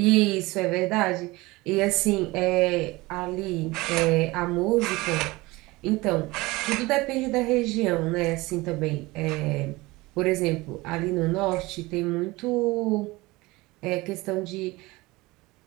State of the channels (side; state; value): left; quieter; 21.4 dB